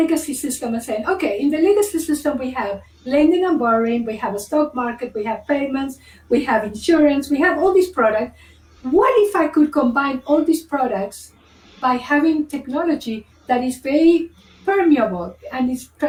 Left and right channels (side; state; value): both; identical; correlation 1.00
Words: system and saying, okay, in the legacy system, we have lending and borrowing, we have a stock market, we have payments, we have insurance, we have all these products. What if I could combine all these products by having technology that is very permeable and is